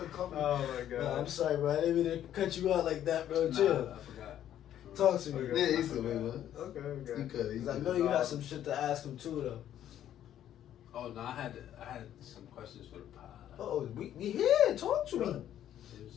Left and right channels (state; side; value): quieter; right; 11.1 dB